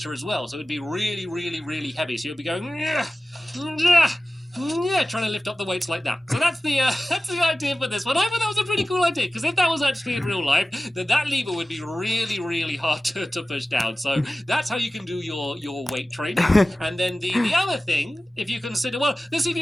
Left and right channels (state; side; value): normal; both; correlation 0.96